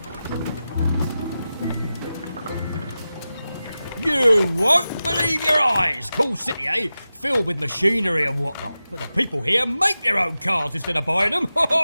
You won't believe your eyes! Cool city, eh? Filled with machinery and whatnot. But the people here make their own cars instead of buying them.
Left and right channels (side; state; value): both; inverted; correlation -0.94